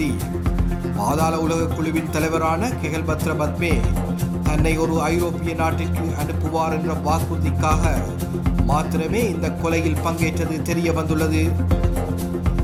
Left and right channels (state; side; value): identical; both; correlation 1.00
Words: பாதாள உலக குழுவின் தலைவரான கெஹல்பத்ர பத்மே தன்னை ஒரு ஐரோப்பிய நாட்டிற்கு அனுப்புவார் என்ற வாக்குறுதிக்காக மாத்திரமே இந்த கொலையில் பங்கேற்றது தெரிய வந்துள்ளது.